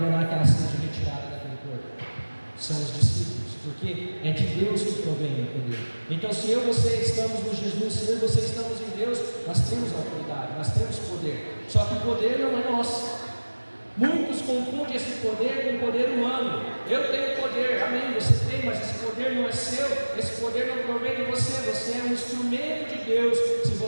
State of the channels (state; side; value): inverted; both; correlation -1.00